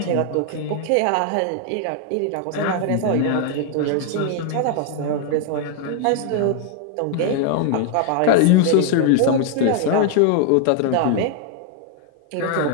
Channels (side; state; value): both; different; correlation 0.00